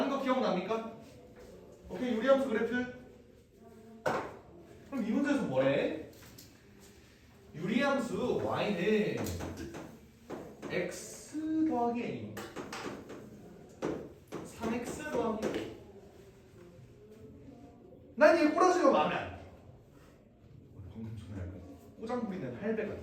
거 기억납니까? 오케이, 유리함수 그래프. 그럼 이 문제에서 뭐래? 유리함수 y는 x 더하기 a 3x 더하기 a. 난 얘 꼬라지가 마음에 안 나. 방금 전에 약간 꼬장 부리는 할배가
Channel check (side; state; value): both; identical; correlation 1.00